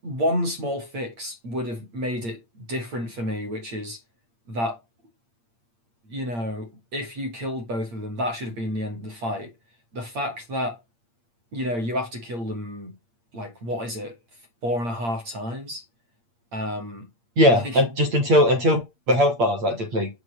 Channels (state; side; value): late; left; 8.6 ms